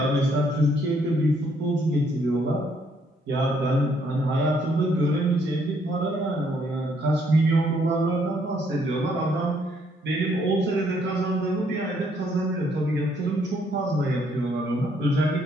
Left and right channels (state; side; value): normal; both; correlation 0.68